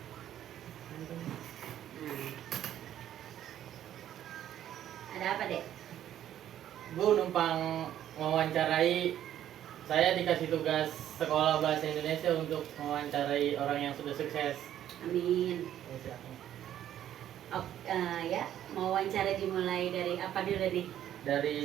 Ada apa, Dek? Bu numpang mewawancarai. Saya dikasih tugas sekolah bahasa Indonesia untuk mewawancarai orang yang sudah sukses. Amin. Ya, silakan. Oh, ya, mau wawancara dimulai dari apa dulu nih? Dari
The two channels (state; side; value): quieter; left; 11.3 dB